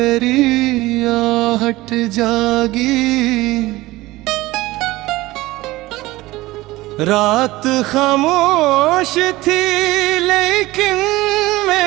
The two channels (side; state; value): left; quieter; 18.8 dB